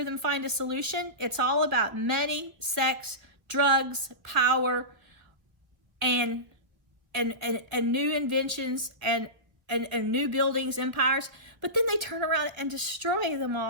them find a solution? It's all about money, sex, drugs, power, and new inventions and new buildings, empires. But then they turn around and destroy them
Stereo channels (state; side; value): late; left; 1.3 ms